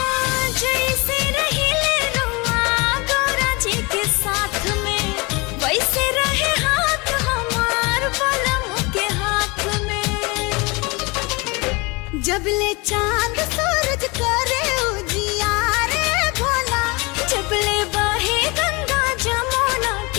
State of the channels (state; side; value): quieter; right; 26.7 dB